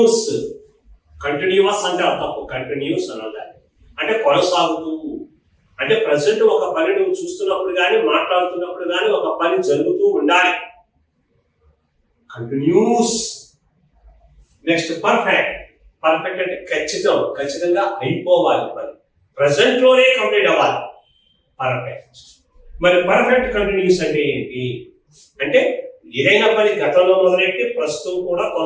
అంటే తప్పు. కంటిన్యూస్ అనాలి అంటే కొనసాగుతూ. అంటే ప్రజెంట్ ఒక పని నువ్వు చూస్తున్నప్పుడు కానీ మాట్లాడుతున్నప్పుడు కానీ ఒక పని జరుగుతూ ఉండాలి. కంటిన్యూస్. నెక్స్ట్ పర్ఫెక్ట్ అంటే ఖచ్చితంగా అయిపోవాలి పని. ప్రజెంట్ లోనే కంప్లీట్ అవ్వాలి. పర్ఫెక్ట్. మరి పర్ఫెక్ట్ కంటిన్యూస్ అంటే ఏంటి? అంటే ఏదైనా పని గతంలో మొదలెట్టి ప్రస్తుతం కూడా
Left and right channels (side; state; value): both; identical; correlation 1.00